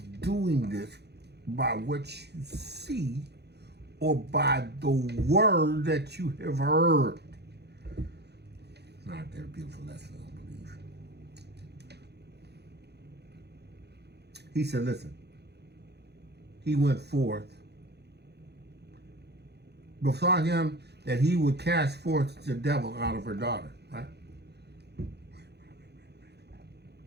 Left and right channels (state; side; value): late; left; 0.48 ms